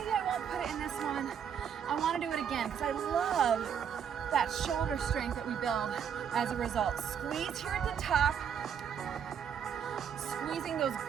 I won't put it in this one. I want to do it again because I love that shoulder strength that we build as a result. Squeeze here at the top, squeezing those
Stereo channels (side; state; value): left; quieter; 8.0 dB